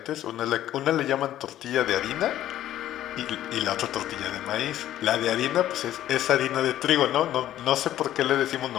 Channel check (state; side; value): quieter; right; 12.7 dB